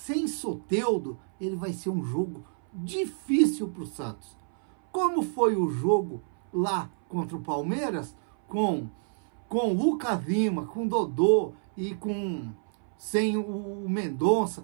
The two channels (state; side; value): silent; left; 58 dB below the other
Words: Soteldo, ele vai ser um jogo difícil para o Santos. Como foi o jogo lá contra o Palmeiras, com Lucas Lima, com Dodô e sem o